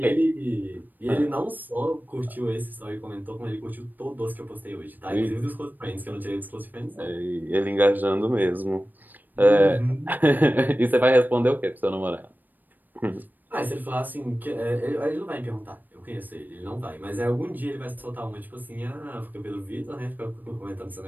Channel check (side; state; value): left; late; 0.088 ms